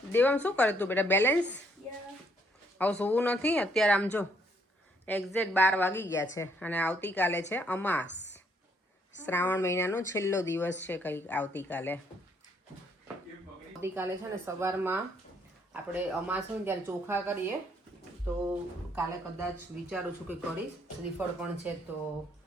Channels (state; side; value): normal; both; correlation 0.69